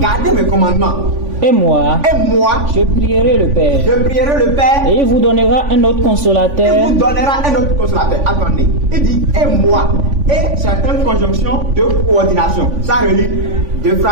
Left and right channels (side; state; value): left; late; 3.5 ms